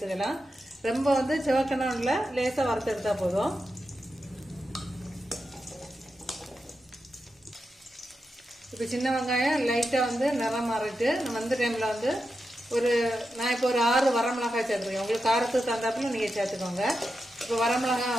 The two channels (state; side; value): normal; both; correlation 0.89